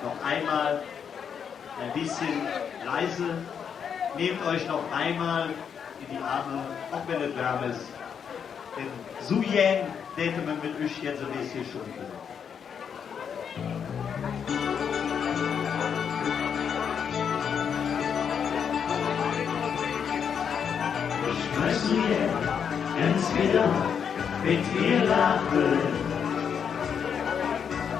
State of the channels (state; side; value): quieter; right; 7.4 dB